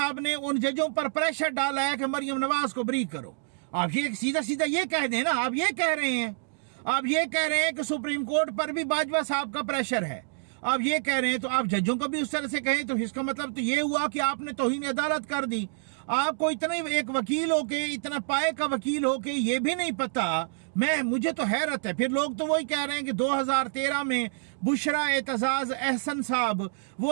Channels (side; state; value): left; silent; digital silence